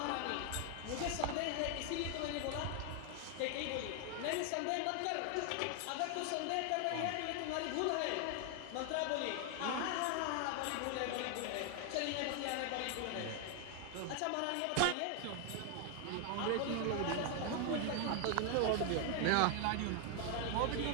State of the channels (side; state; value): both; different; correlation 0.00